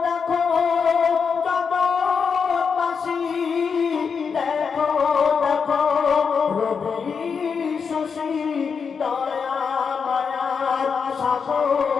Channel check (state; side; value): quieter; right; 6.0 dB